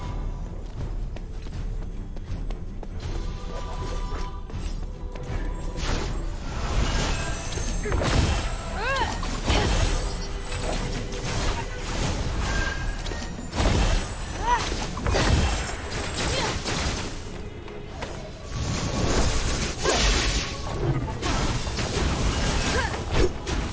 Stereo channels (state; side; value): identical; both; correlation 1.00